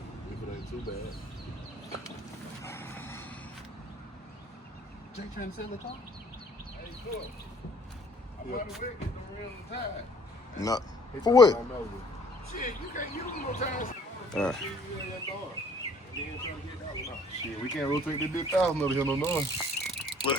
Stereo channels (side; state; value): both; normal; correlation 0.57